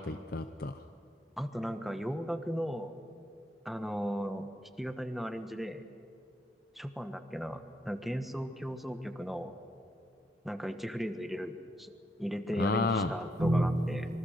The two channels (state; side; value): normal; both; correlation 0.78